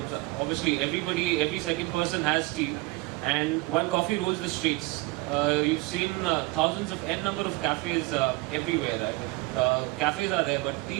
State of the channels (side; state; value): left; quieter; 23.3 dB